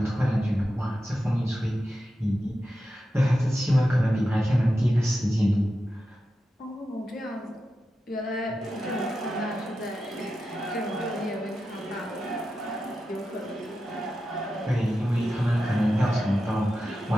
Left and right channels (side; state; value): both; normal; correlation 0.90